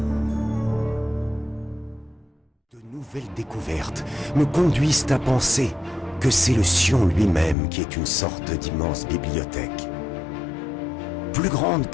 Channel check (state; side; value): drops out; right; at 7.6 s